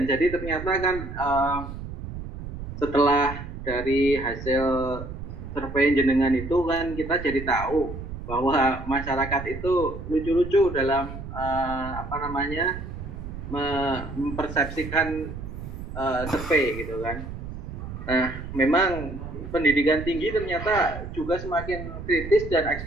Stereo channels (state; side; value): noise; right; rumble, 9 dB below the sound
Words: jadi ternyata kan setelah dari hasil survei jenengan itu kan kita jadi tahu bahwa masyarakat itu lucu-lucu dalam mempersepsikan survei gitu kan. Nah, memang pendidikan tinggi ternyata juga semakin kritis dan